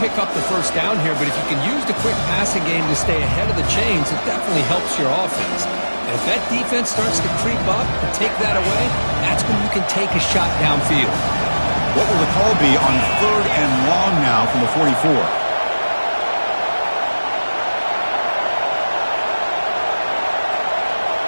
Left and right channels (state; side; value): inverted; both; correlation -1.00